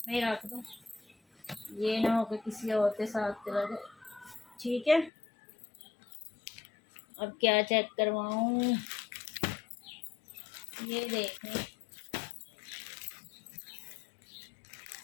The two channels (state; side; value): drops out; right; at 5.1 s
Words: में रख दूँ, ये ना हो कि किसी और के साथ चला जाए, ठीक है। अब क्या चेक करवाऊँ, ये देखें,